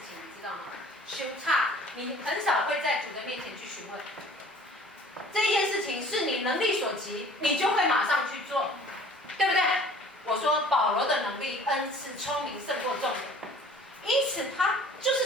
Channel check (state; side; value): normal; both; correlation 0.49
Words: 情，你知道吗？修差，你很少会在主的面前去询问。这件事情是你能力所及，你就会马上去做，对不对？我说保罗的能力、恩赐、聪明胜过众人，因此他就